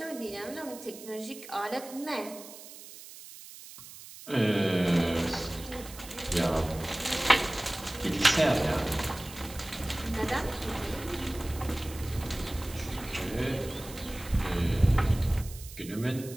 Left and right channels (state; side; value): noise; right; hiss, 15 dB below the sound